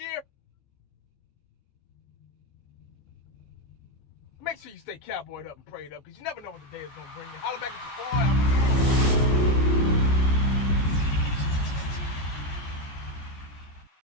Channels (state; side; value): late; right; 14 ms